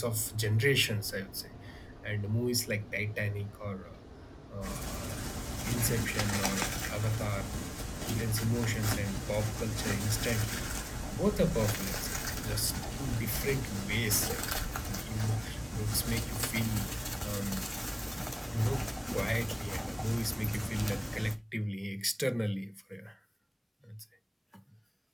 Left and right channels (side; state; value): both; identical; correlation 1.00